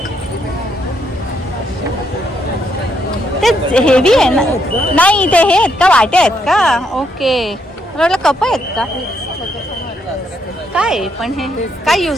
ते हेवी आहे ना. नाही ते हे आहेत का, वाटे आहेत का? ओके, मला वाटलं कप आहेत का काय. पण हे काय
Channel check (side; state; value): both; normal; correlation 0.75